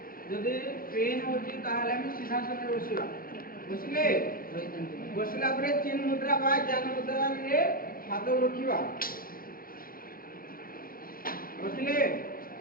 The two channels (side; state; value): right; late; 0.42 ms